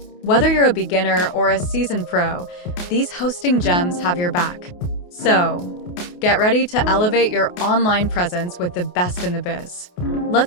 Whether you're a beginner or a seasoned pro, these hosting gems have your back. So, get ready to elevate your online presence with the best in the biz.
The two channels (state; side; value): late; right; 28 ms